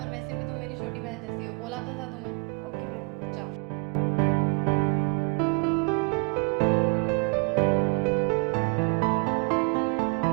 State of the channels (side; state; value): left; quieter; 35.2 dB